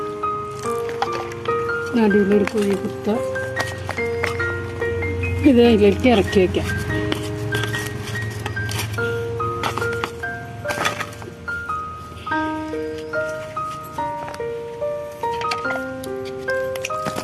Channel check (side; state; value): both; identical; correlation 1.00